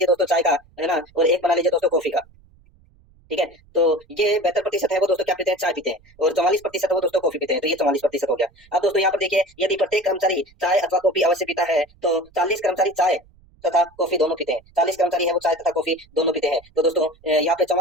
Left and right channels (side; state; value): right; noise; rumble, 29 dB below the sound